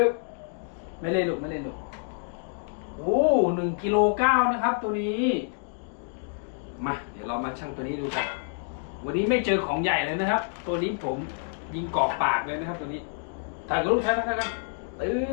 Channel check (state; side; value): silent; right; digital silence